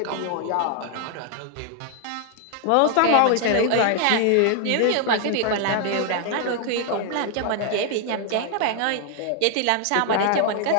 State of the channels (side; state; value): both; different; correlation 0.00